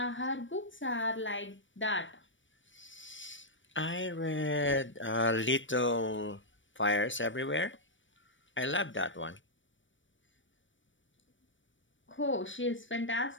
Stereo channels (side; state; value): right; late; 0.56 ms